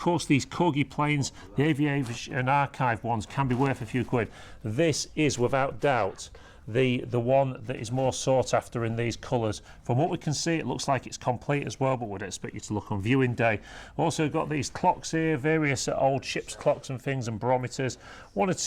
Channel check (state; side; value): identical; both; correlation 1.00